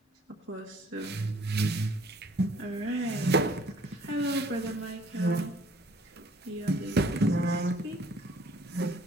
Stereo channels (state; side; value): normal; both; correlation 0.58